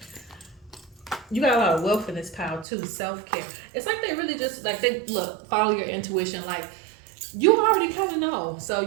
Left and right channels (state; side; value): drops out; left; at 2.7 s